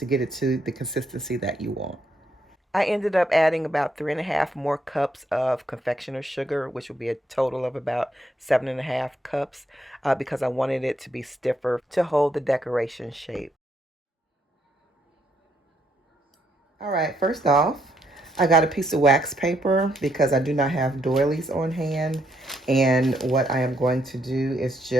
get it to the consistency that you want. I ended up adding about 3.5 more cups of confectioner's sugar, which will be a total of about 7.5 cups because I wanted it to be stiffer to hold the decoration shape. All right, first off, I got a piece of wax paper because I do not have doilies on hand. And what I am going to do is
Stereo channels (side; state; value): both; normal; correlation 0.75